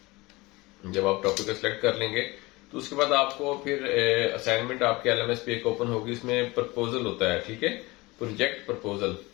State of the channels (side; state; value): right; quieter; 22.4 dB